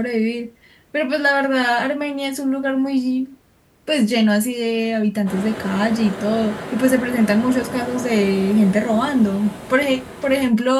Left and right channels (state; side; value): identical; both; correlation 1.00